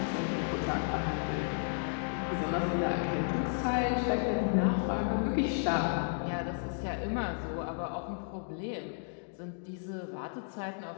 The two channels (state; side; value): silent; right; digital silence